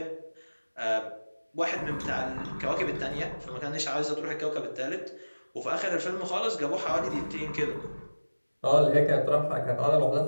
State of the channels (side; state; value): both; inverted; correlation -1.00